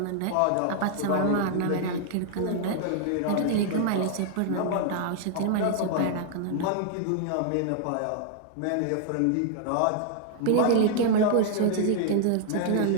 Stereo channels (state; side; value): different; both; correlation -0.01